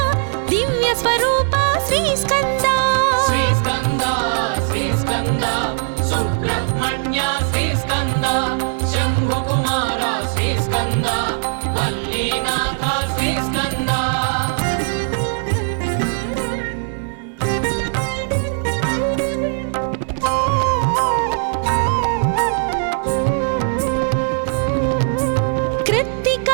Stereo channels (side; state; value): left; silent; digital silence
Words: దివ్య స్వరూప శ్రీ స్కంద శ్రీ స్కంద శ్రీ స్కంద సుబ్రహ్మణ్య శ్రీ స్కంద శంభు కుమార శ్రీ స్కంద వల్లీనాథ శ్రీ స్కంద